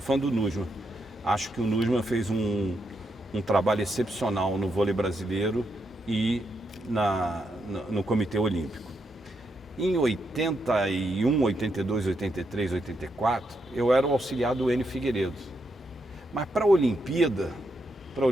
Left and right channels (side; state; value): both; normal; correlation 0.81